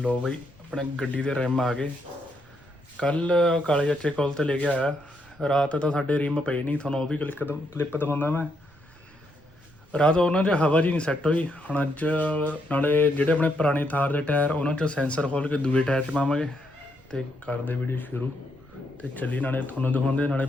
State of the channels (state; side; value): noise; right; rumble, 28 dB below the sound